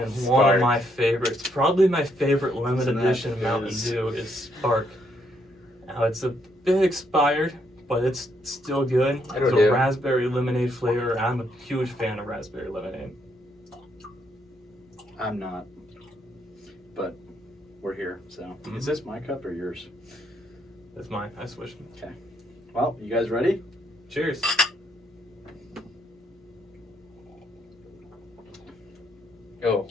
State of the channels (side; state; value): both; normal; correlation 0.74